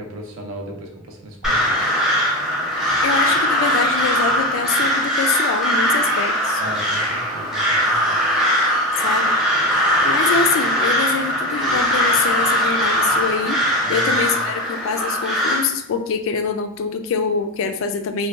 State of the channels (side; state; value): both; normal; correlation 0.19